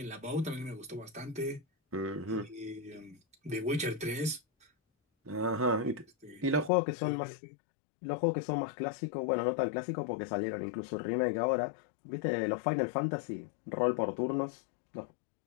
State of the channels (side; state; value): right; drops out; at 6.7 s